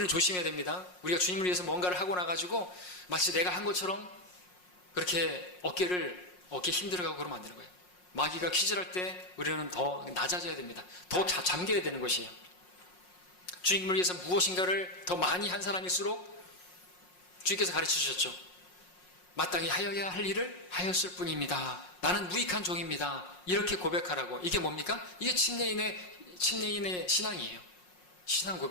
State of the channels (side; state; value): right; late; 5.5 ms